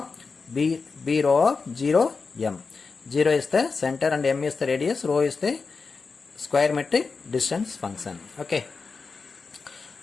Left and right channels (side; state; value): right; quieter; 4.6 dB